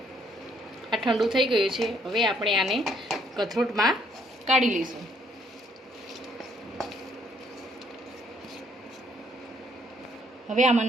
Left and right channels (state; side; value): normal; both; correlation 0.67